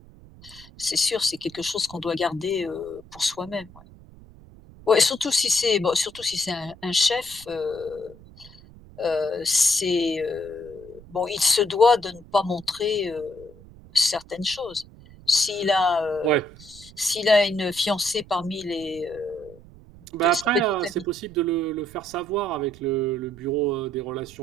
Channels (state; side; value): noise; right; rumble, 21 dB below the sound